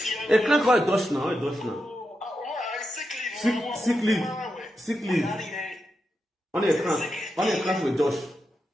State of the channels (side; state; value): both; normal; correlation 0.87